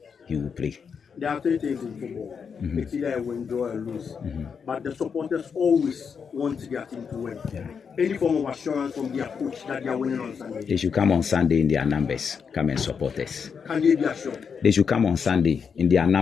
he will play. There are three things in football. It's either a win, draw, or lose. But the supporters always want their team to win. Yeah. Any form of assurance from their coach that they are winning on Sunday. They should come on Sunday in their numbers, come and support us. Can they be assured? They should come on Sunday in their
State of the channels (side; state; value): right; quieter; 6.4 dB